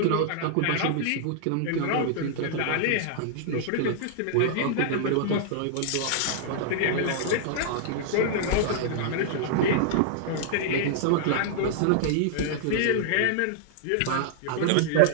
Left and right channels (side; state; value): both; different; correlation -0.01